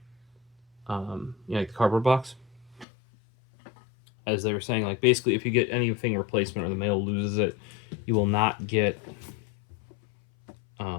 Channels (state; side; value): drops out; right; at 2.9 s